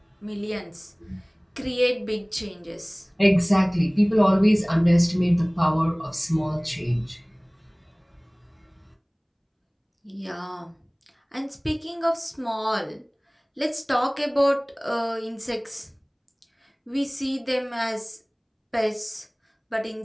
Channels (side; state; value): both; identical; correlation 1.00